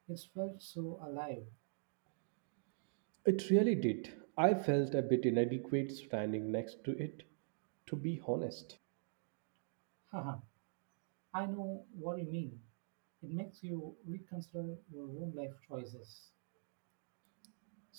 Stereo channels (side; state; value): left; silent; digital silence